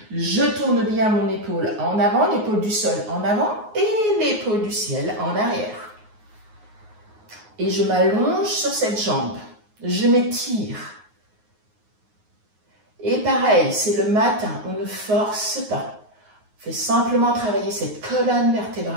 Je tourne bien mon épaule en avant, l'épaule du sol en avant et l'épaule du ciel en arrière. Et je m'allonge sur cette jambe. Je m'étire. Et pareil, c'est le matin, on ne force pas. On fait simplement travailler cette colonne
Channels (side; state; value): left; late; 9.5 ms